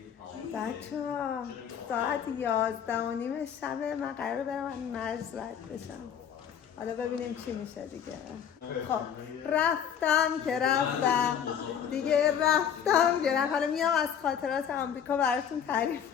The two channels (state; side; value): quieter; right; 8.4 dB